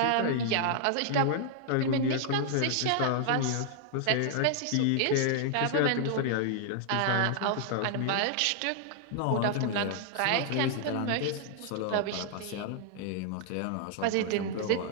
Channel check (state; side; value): different; both; correlation -0.01